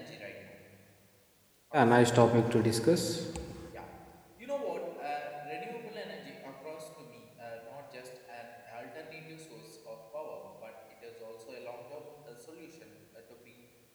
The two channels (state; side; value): identical; both; correlation 1.00